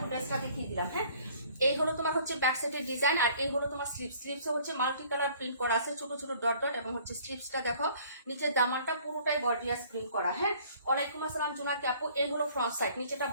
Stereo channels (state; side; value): inverted; both; correlation -0.56